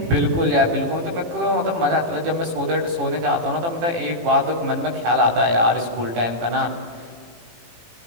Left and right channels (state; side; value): late; left; 18 ms